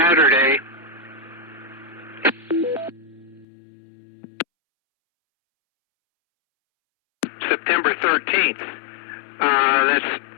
September 13th. That's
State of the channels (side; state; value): right; drops out; at 3.5 s